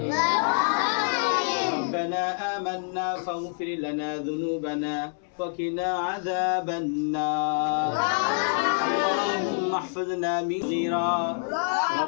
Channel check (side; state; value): right; silent; 61 dB below the other